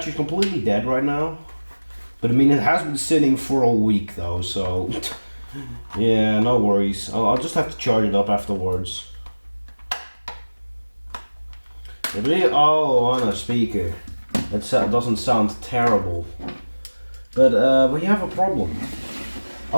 completely dead right now. But I mean, it has been sitting for a week though, so yeah, no worries. I'll just have to charge it up afterwards. Oh, on a speaker. That doesn't sound terrible. But we have a problem.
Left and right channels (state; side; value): inverted; both; correlation -1.00